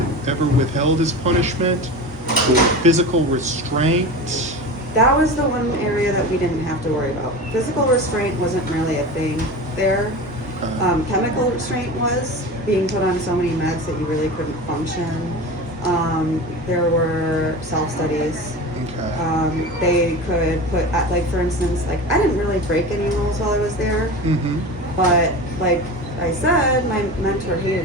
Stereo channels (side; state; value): both; normal; correlation 0.30